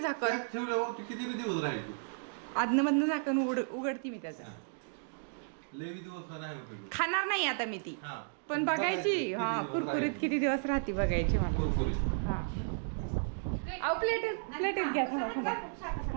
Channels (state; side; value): silent; left; digital silence